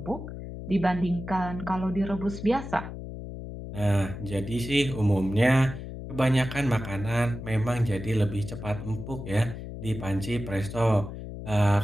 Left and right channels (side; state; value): left; noise; hum, 9 dB below the sound